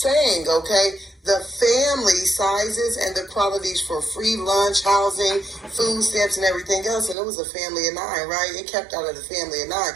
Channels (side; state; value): left; drops out; at 7.2 s